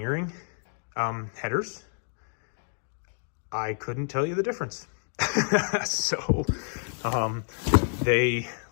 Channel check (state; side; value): silent; right; digital silence